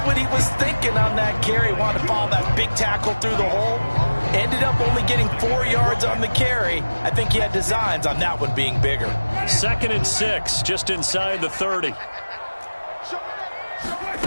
what he was thinking on that carry. Wanted to follow that big tackle through the hole. Ended up only getting 4 yards on the carry. I think he had designs on that one being bigger. 2nd and 6, just inside the 30.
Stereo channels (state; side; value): inverted; both; correlation -1.00